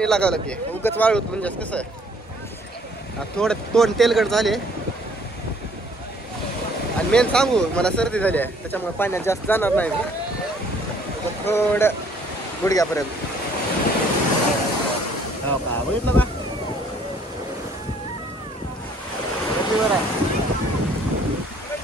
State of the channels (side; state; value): both; normal; correlation 0.60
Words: लागावं लागते, उगाच वाळूत म्हणजे कसं आहे, थोडं तोंड तेलगट झाले आणि मेन सांगू मला सर्दी झाली आहे, त्याच्यामुळे पाण्यात जास्त जाणार नाही मी, थोडं गुडघ्यापर्यंत। हो का, बघितलं का बरं आहे।